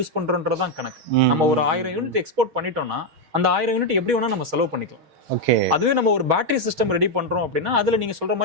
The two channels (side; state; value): left; late; 6.4 ms